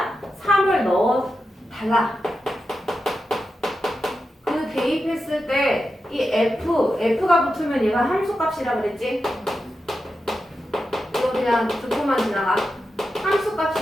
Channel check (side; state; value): both; normal; correlation 0.90